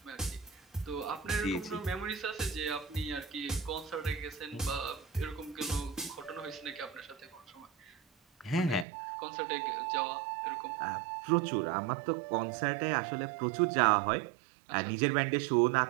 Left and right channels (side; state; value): left; drops out; at 8.8 s